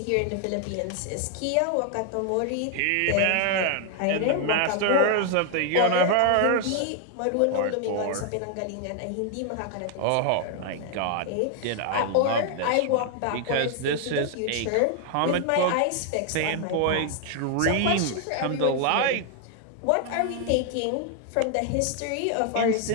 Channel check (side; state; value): both; different; correlation 0.00